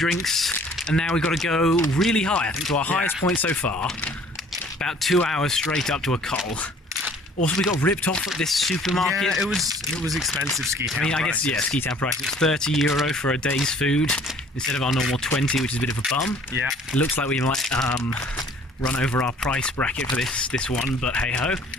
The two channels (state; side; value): normal; both; correlation 0.54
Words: and now we've got to go really high, I think to our highest point so far. About 2 hours straight up to a col. Also, we got ripped off at this supermarket. Yeah, it was expensive ski town. I mean, I guess, yeah, ski town price. It's €30 for a day's food instead of our normal 20, which is a bit of a bum. Yeah. It looks like we might run over our price bracket for this one, but hey ho.